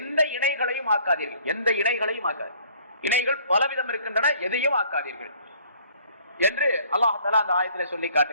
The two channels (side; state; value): both; inverted; correlation -0.58